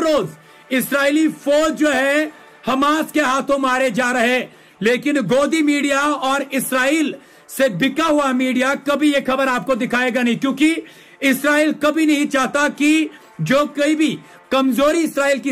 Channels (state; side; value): identical; both; correlation 1.00